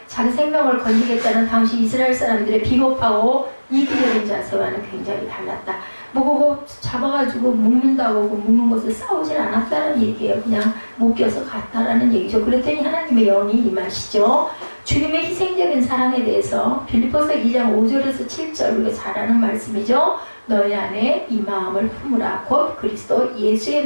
자기 생명을 건지겠다는 당시 이스라엘 사람들의 비겁하고 이기적인 자세와는 굉장히 달랐다. 그거 잡아가지고 묶는다고 묶는 것을 싸우질 않았다는 얘기예요. 그냥 묶여서 갔다라는 얘기죠. 그랬더니 하나님의 영이 임하시죠. 주님의 희생적인 사랑에 대해서 빌립보서 2장 5절에서 7절 우리가 잘 아는 말씀이죠. 너희 안에 이 마음을 품으라. 곧 그리스도 예수의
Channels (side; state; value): both; inverted; correlation -1.00